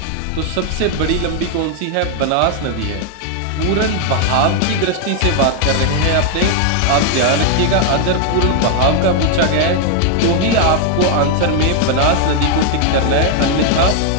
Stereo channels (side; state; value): both; different; correlation 0.00